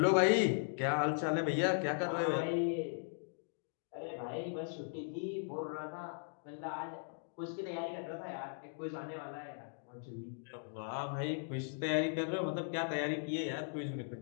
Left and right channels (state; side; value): silent; right; digital silence